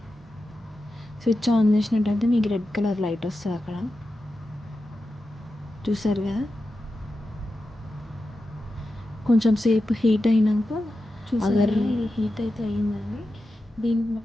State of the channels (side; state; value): both; normal; correlation 0.91